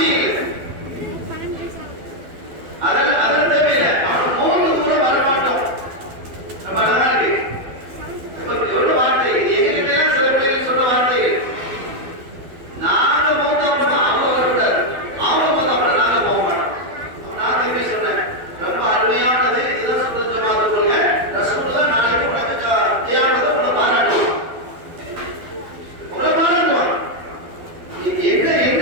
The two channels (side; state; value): left; late; 12 ms